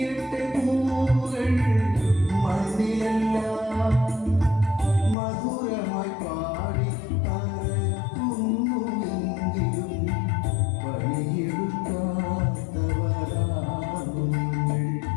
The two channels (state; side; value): drops out; right; at 5.2 s